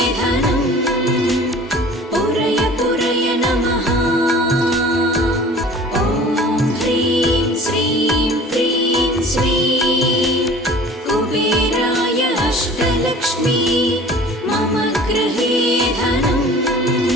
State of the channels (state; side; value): normal; both; correlation 0.45